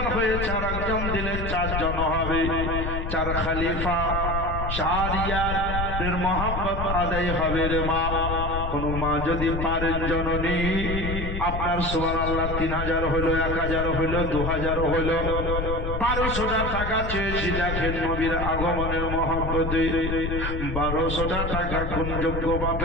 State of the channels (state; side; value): noise; left; rumble, 3 dB below the sound